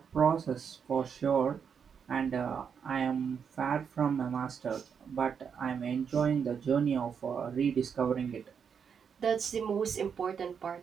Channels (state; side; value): quieter; left; 6.9 dB